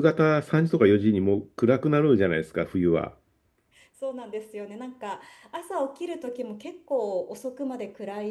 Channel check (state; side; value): identical; both; correlation 1.00